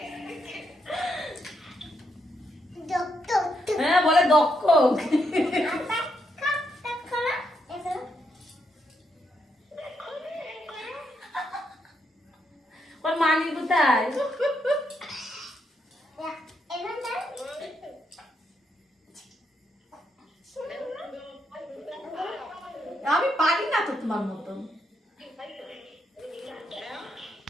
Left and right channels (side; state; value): both; normal; correlation 0.79